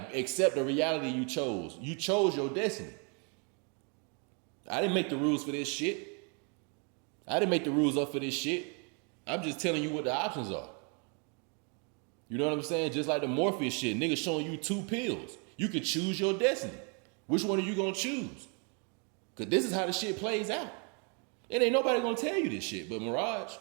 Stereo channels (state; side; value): quieter; left; 37.0 dB